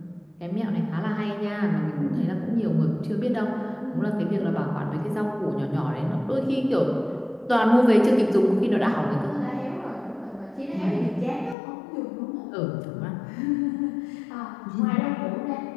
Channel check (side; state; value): right; drops out; at 11.6 s